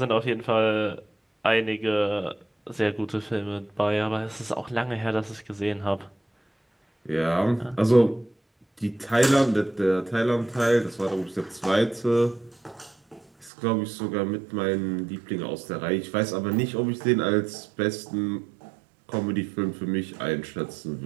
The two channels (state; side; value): drops out; left; at 13.5 s